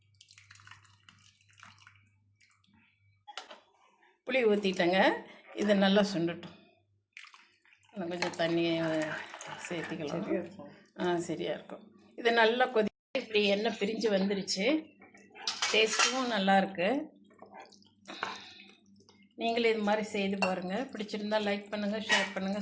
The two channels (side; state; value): both; identical; correlation 1.00